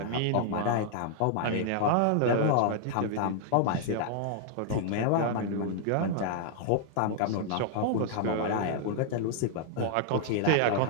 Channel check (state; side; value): different; both; correlation -0.01